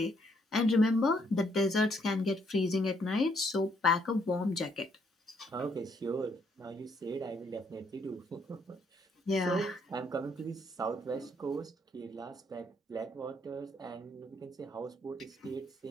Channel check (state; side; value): normal; both; correlation 0.70